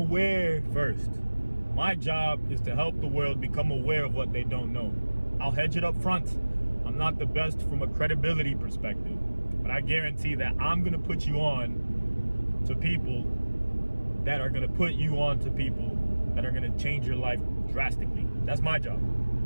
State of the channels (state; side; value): inverted; both; correlation -1.00